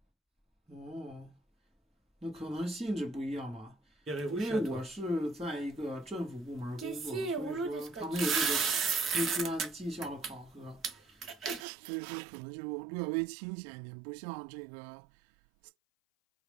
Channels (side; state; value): left; drops out; at 11.7 s